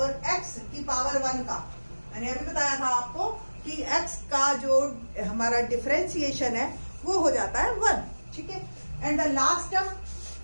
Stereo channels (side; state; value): both; inverted; correlation -1.00